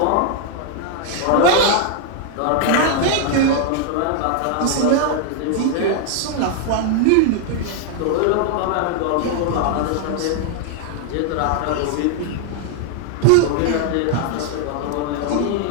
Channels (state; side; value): different; both; correlation 0.00